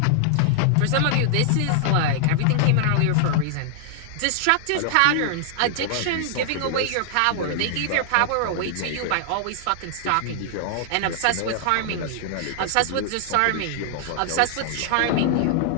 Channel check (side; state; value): both; different; correlation -0.01